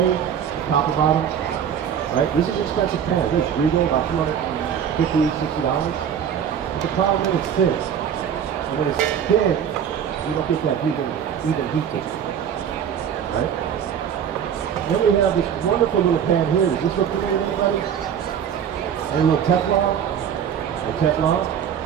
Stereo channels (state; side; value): quieter; left; 8.5 dB